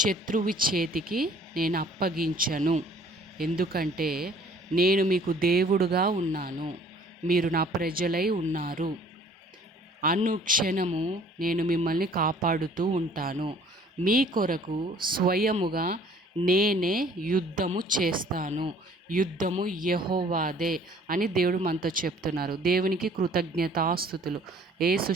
చేతికి నేను అప్పగించను. ఎందుకంటే నేను మీకు దేవుడుగా ఉన్నాను, మీరు నా ప్రజలై ఉన్నారు. అనుక్షణము నేను మిమ్మల్ని కాపాడుతూ ఉంటాను. మీ కొరకు స్వయముగా నేనే యుద్ధము చేస్తాను. యుద్ధము యెహోవాదే అని దేవుడు మనతో చెప్తున్నారు. దేవునికి కృతజ్ఞతాస్తుతులు. యేసు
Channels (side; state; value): both; normal; correlation 0.54